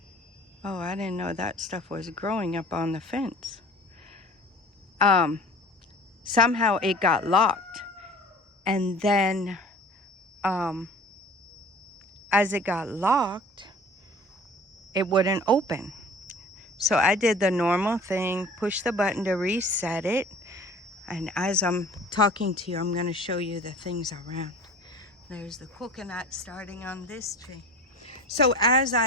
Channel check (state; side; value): normal; both; correlation 0.44